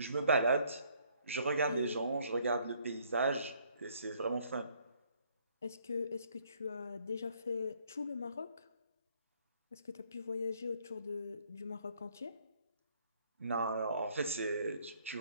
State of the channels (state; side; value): inverted; both; correlation -0.65